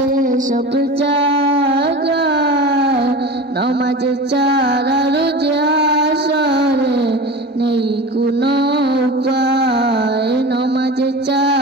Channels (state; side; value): normal; both; correlation 0.32